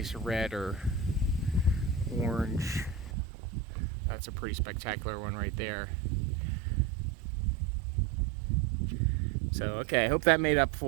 red or orange. That's a pretty spectacular one right there. So, okay, I hope that made up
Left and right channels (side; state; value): left; drops out; at 3.1 s